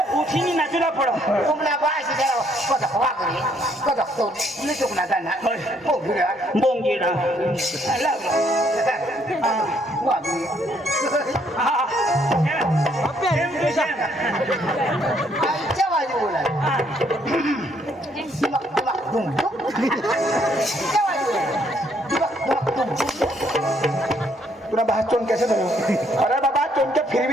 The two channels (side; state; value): both; normal; correlation 0.68